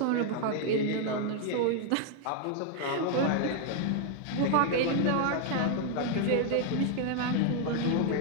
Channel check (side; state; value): both; different; correlation 0.00